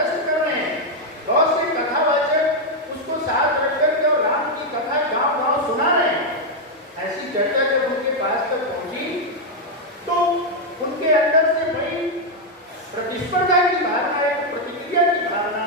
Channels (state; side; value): normal; both; correlation 0.00